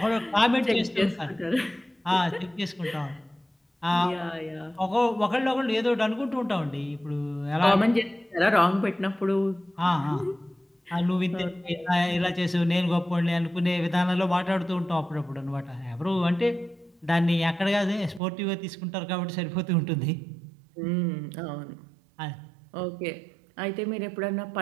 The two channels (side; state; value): left; drops out; at 18.2 s